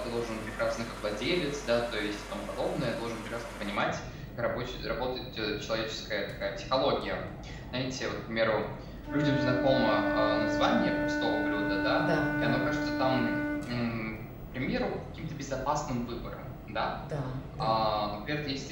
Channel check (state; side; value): identical; both; correlation 1.00